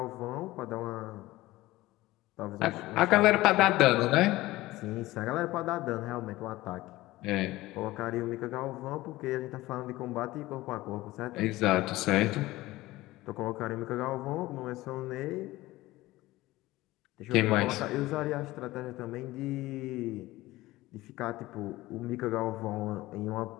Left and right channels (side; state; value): right; quieter; 18.1 dB